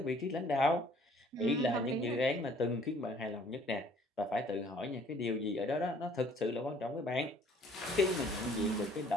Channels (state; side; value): normal; both; correlation 0.57